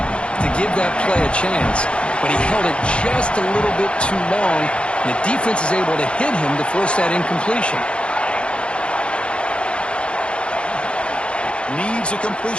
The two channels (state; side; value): late; right; 0.057 ms